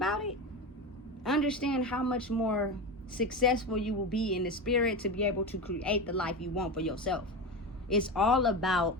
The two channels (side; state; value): both; normal; correlation 0.21